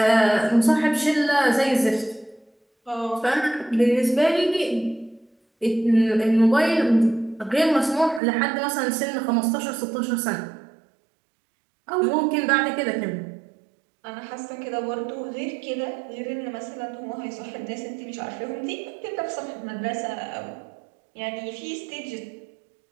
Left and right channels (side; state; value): left; drops out; at 8.2 s